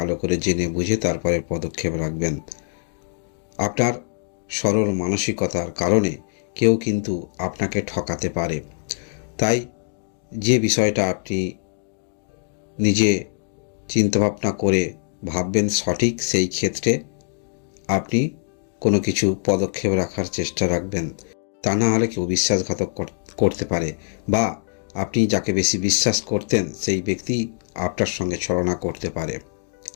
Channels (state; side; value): silent; right; digital silence